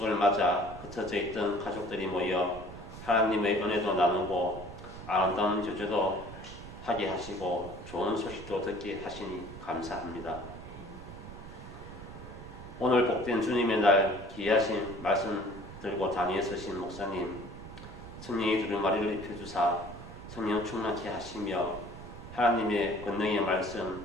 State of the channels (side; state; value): right; noise; rumble, 13 dB below the sound